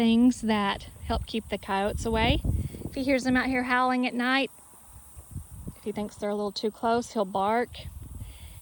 that help keep the coyotes away. If he hears them out here howling at night, if he thinks they're a little too close, he'll bark.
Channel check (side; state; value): both; identical; correlation 1.00